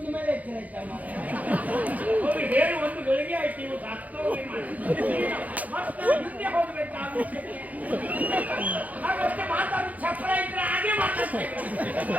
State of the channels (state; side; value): late; left; 0.076 ms